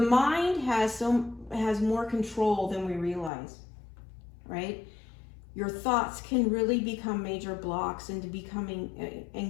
mind has more control than we realize, right? Your thoughts can really become major blocks into becoming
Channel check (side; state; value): right; drops out; at 3.3 s